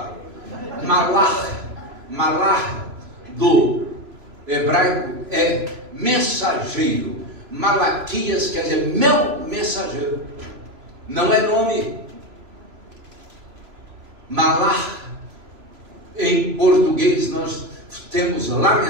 Malach do hebraico é mensageiro. Malaquias quer dizer meu mensageiro. Não é nome. Malach, em português, nós temos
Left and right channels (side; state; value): left; late; 3.0 ms